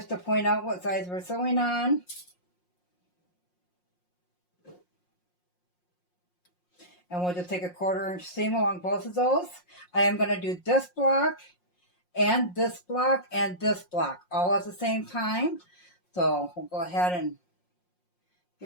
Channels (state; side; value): late; right; 5.6 ms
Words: to point out what size we're sewing on. And we'll just take a 1/4 inch seam along both of those. I am going to do this block and this block and this block all at the same time. So we'll go ahead and